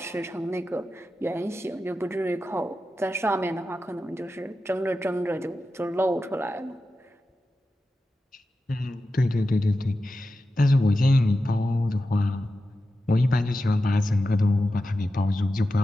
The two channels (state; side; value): normal; both; correlation 0.92